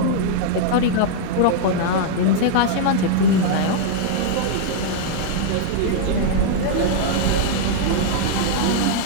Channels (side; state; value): both; different; correlation -0.02